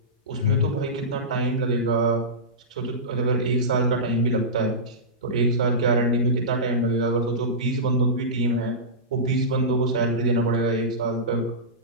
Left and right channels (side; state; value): both; normal; correlation -0.17